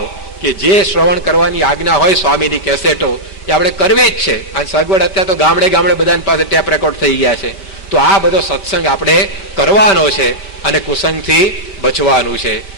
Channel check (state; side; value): late; right; 5.2 ms